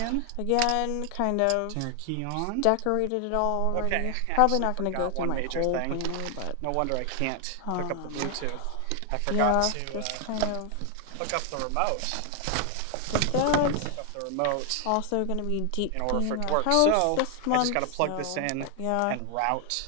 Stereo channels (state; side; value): different; both; correlation 0.00